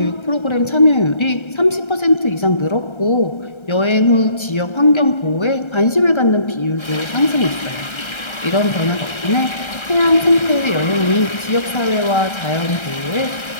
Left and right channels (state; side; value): late; right; 1.3 ms